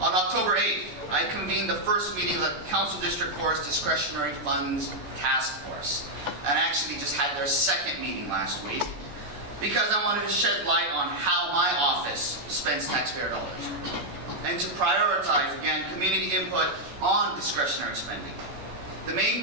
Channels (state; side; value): late; left; 14 ms